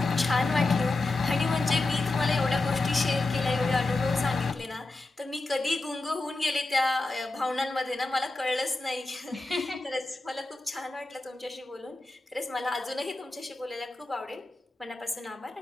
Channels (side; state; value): right; quieter; 3.1 dB